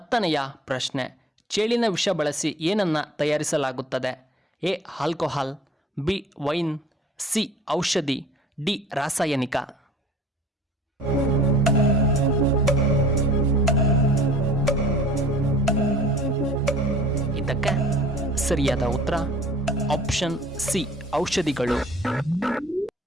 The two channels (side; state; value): both; normal; correlation 0.49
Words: ಪ್ರಶ್ನೆ, ಚೇಳಿನ ವಿಷ ಬಳಸಿ ಏನನ್ನ ತಯಾರಿಸಲಾಗುತ್ತದೆ? A alcohol, B wine, C ಔಷಧಿ, ಡಿ ರಾಸಾಯನಿಕ. ಇದಕ್ಕೆ ಸರಿಯಾದ ಉತ್ತರ ಆಪ್ಷನ್ ಸಿ ಔಷಧಿಗಳು.